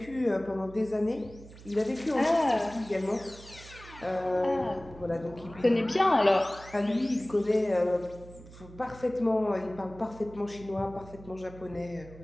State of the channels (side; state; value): right; noise; hum, 18 dB below the sound